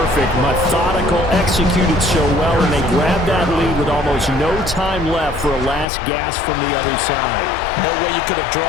Methodical, executed so well, and they grabbed that lead with almost no time left for a last gasp from the other side. No way you could have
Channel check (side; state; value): right; drops out; at 5.9 s